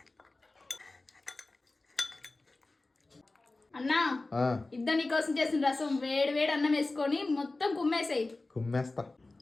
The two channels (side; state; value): right; quieter; 3.2 dB